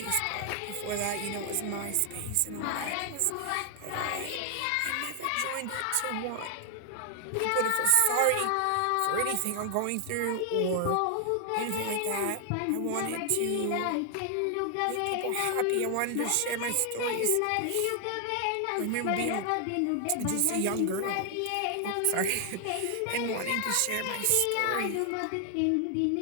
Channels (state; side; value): different; both; correlation 0.00